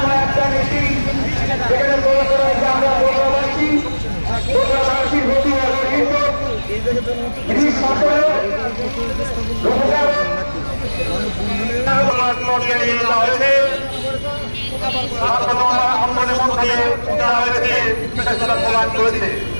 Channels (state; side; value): inverted; both; correlation -1.00